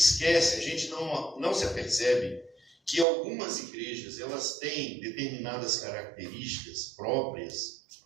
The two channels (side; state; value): left; drops out; at 3.1 s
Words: a gente não se apercebe que algumas igrejas, elas têm determinadas características próprias